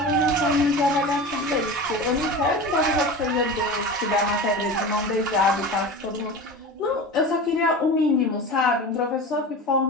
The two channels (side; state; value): both; normal; correlation 0.31